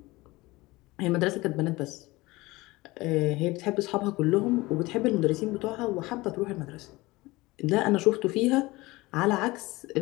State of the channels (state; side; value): quieter; right; 21.0 dB